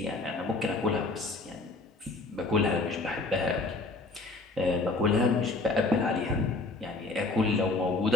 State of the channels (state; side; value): quieter; right; 3.3 dB